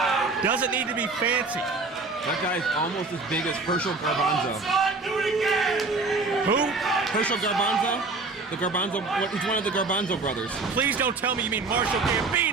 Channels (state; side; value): quieter; left; 3.7 dB